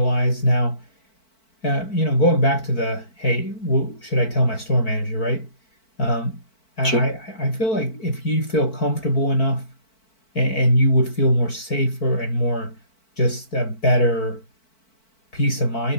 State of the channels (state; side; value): late; right; 4.5 ms